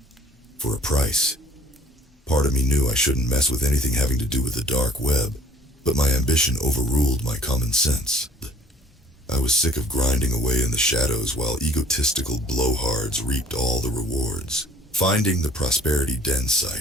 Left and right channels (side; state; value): both; normal; correlation 0.53